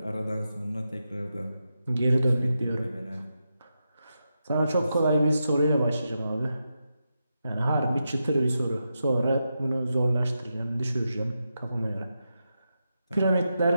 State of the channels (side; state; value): both; inverted; correlation -0.87